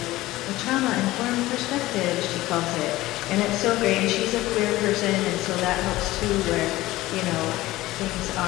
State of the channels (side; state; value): right; quieter; 17.3 dB